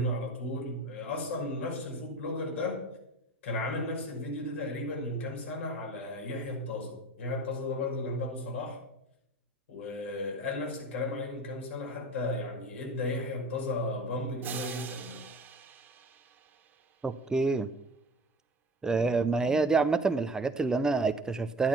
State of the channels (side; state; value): both; normal; correlation 0.39